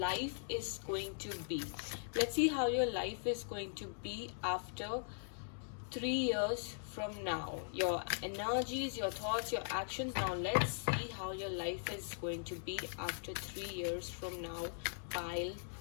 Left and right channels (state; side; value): silent; right; digital silence